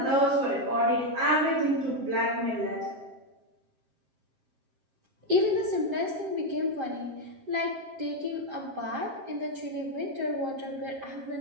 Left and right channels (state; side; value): late; left; 7.5 ms